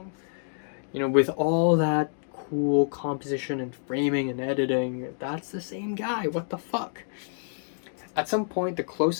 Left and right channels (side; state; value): right; silent; digital silence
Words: You know, with all that cool composition and framing and editing, that's the same guy. What the fuck? At some point, the